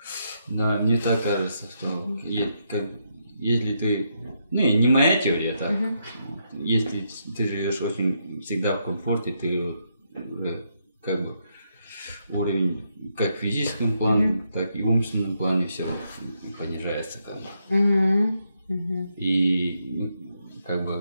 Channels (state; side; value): inverted; both; correlation -0.79